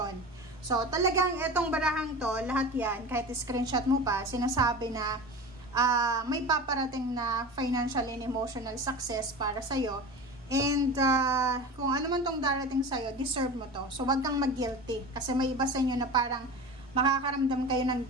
So, talagang itong barahang to, lahat yan, kahit screenshot mo pa, sinasabi na may paparating na financial and emotional success para sa'yo. And kung ano man tong darating sa'yo, deserve mo to. So, wag kang mag-guilty. Kasi may iba sa inyo na parang makakaramdam kayo ng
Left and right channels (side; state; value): both; normal; correlation 0.31